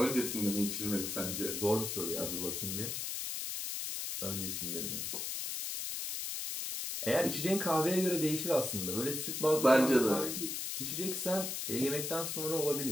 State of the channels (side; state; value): left; noise; hiss, 3 dB below the sound